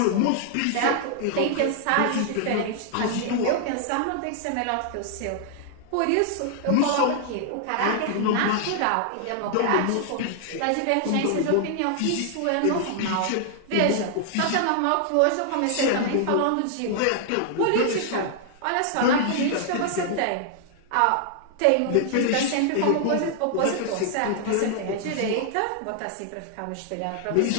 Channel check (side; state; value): both; different; correlation -0.01